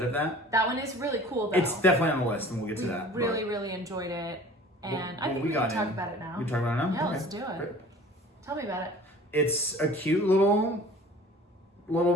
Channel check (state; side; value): normal; both; correlation 0.46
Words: of that. That one is really cool, though. It's definitely on the list, and we'll get to that. Really, really enjoyed it. And I think we can talk about it now. We can talk about it now? Yeah, Okay. let's do it. Great. Tell me about it. It's a cute little